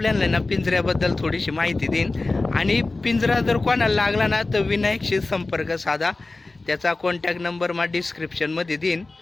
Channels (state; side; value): quieter; right; 3.3 dB